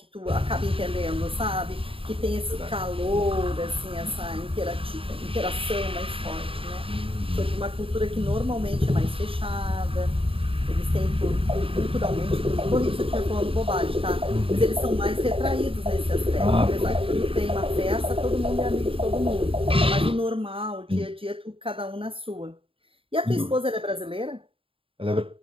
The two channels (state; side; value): late; left; 0.26 ms